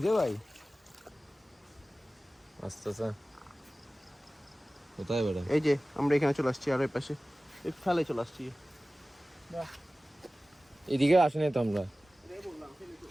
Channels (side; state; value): both; normal; correlation 0.97